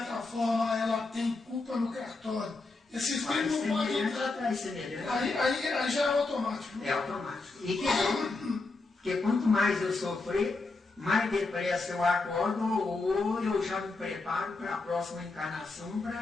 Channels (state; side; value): quieter; right; 3.6 dB